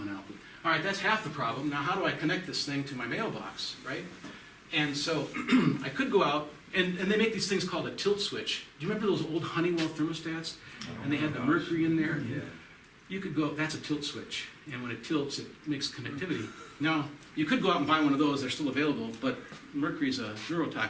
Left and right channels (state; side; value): identical; both; correlation 1.00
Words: out. All right, that's half the problem. Now how do I connect this thing to my mailbox, right? And so I could go out, and they make these things called a tilt switch. Do you remember those old Honeywell thermostats? And they had the mercury in there? Yeah. You could go, that's a tilt switch. And when it tilts, it makes connectivity. Now, you could go out and buy one of those, they're still available, but mercury is a